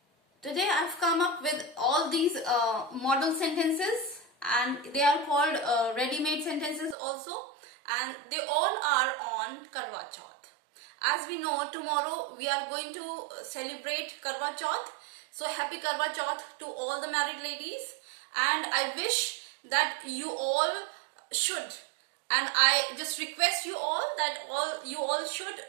Today I've come up with all these model sentences and they are called ready-made sentences also, and they all are on Karwa Chauth. As we know, tomorrow we are going to celebrate Karwa Chauth. So happy Karwa Chauth to all the married ladies, and I wish that you all should, and I just request you all that you all should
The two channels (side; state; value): left; drops out; at 7.0 s